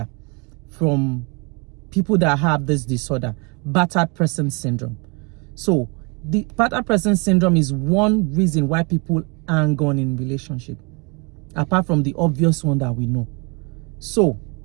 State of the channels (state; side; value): quieter; left; 31.3 dB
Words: from people that have this disorder, battered person syndrome. So the battered person syndrome is one reason why people hang on in relationship, apart from the obvious one that we know. So